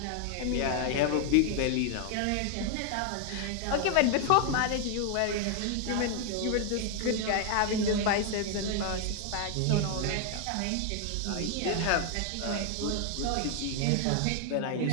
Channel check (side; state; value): both; different; correlation 0.00